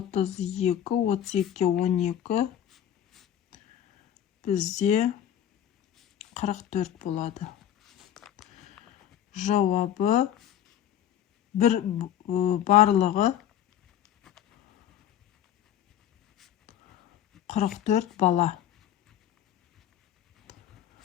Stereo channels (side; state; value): right; quieter; 10.5 dB